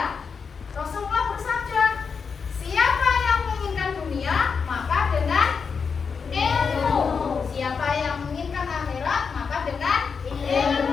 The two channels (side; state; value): right; quieter; 5.7 dB